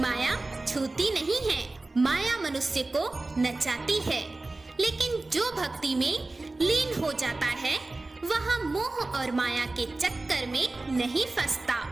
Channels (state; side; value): quieter; left; 3.1 dB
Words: छूती नहीं है। माया मनुष्य को नचाती है, लेकिन जो भक्ति में लीन हो जाता है वह मोह और माया के चक्कर में नहीं फंसता।